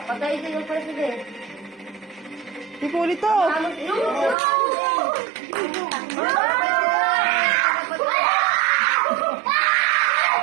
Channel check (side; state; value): left; drops out; at 4.4 s